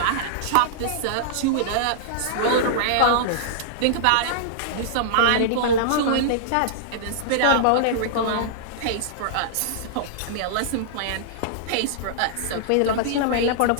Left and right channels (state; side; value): different; both; correlation -0.02